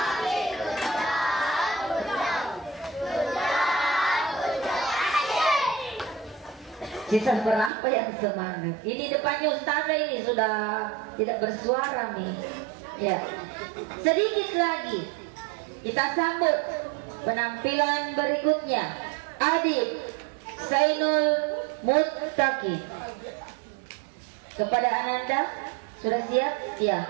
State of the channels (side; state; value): left; drops out; at 7.7 s